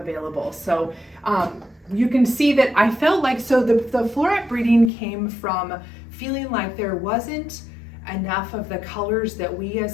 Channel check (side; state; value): right; drops out; at 4.9 s